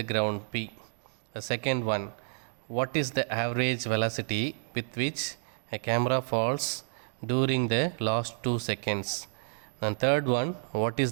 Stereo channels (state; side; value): silent; left; digital silence